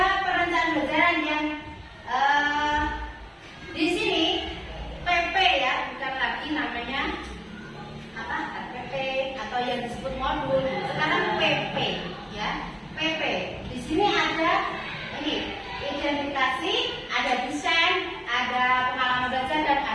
perencanaan pembelajaran yang di sini PP ya, bukan lagi namanya apa PP atau yang disebut modul. Sekarang PP ya, PP. Di sini ada ini identifikasi, ada desain, ada pengalaman belajar dan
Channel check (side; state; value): both; identical; correlation 1.00